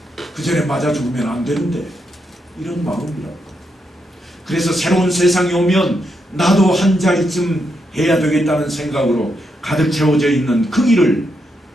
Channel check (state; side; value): normal; both; correlation 0.81